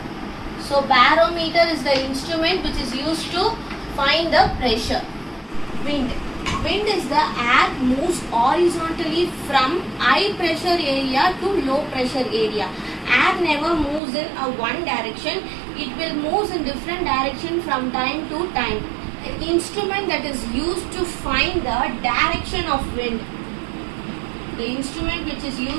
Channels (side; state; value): left; drops out; at 14.0 s